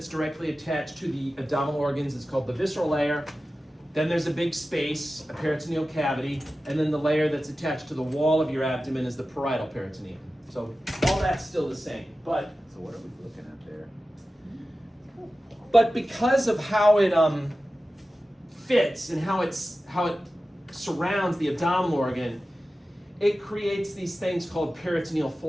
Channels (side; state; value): both; normal; correlation 0.94